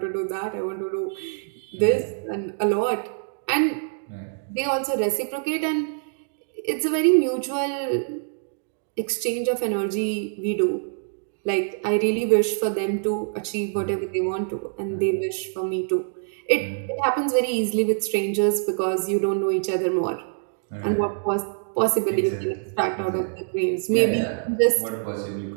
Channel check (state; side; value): silent; left; digital silence